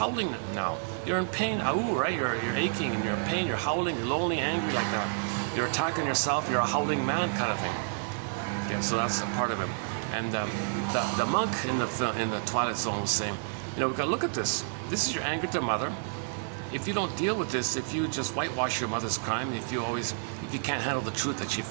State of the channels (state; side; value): silent; left; 58 dB below the other